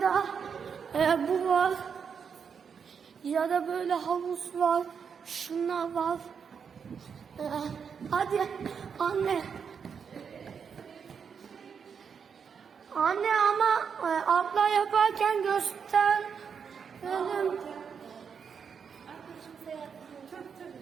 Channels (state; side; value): quieter; left; 6.6 dB